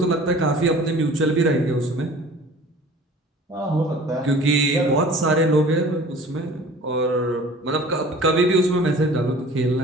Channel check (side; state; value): both; normal; correlation 0.46